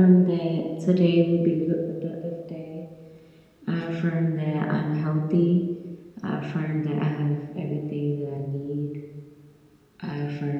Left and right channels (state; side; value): identical; both; correlation 1.00